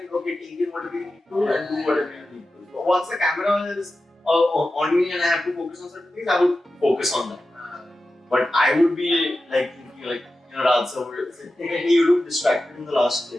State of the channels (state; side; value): normal; both; correlation 0.93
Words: okay, take in whatever you need to and do whatever you need to. So once the camera is on me and I have to focus on certain things, I would focus on that. But I would be like thinking like, Raj sir would say, hey, you look distracted in the last